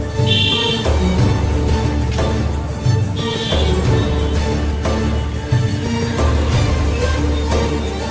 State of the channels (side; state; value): both; identical; correlation 1.00